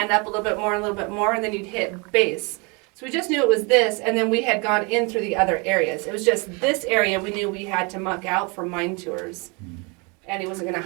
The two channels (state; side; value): quieter; left; 30.6 dB